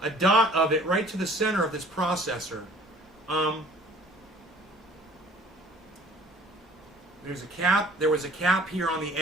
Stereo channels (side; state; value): both; normal; correlation 0.52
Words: a dot of it right to the center of this processor. There's a cap. There was a cap here on the